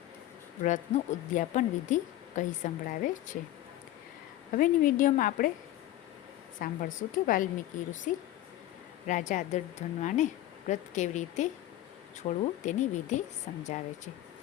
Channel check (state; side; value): quieter; right; 14.1 dB